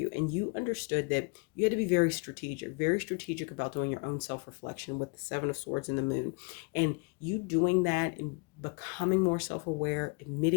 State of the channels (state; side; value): quieter; right; 32.2 dB